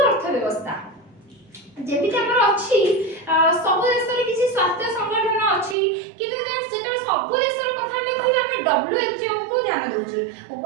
ଅର୍ଥବ୍ୟବସ୍ଥା। ଯେମିତି ଆମର ଅଛି ସବୁ ଦେଶରେ କିଛି ସ୍ୱାସ୍ଥ୍ୟ ସଂଗଠନ ଅଛି କିନ୍ତୁ ଯେତେବେଳେ ସବୁ ଦେଶର କଥା ଆମେ କହିବା ଆମେ WHO କୁ ଧ୍ୟାନ ଦେଉଛେ,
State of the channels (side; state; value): left; drops out; at 5.8 s